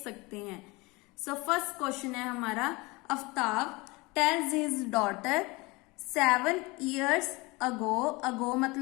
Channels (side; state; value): right; quieter; 24.5 dB